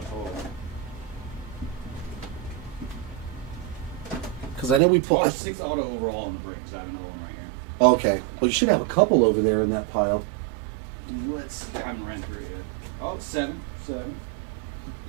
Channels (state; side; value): drops out; left; at 4.8 s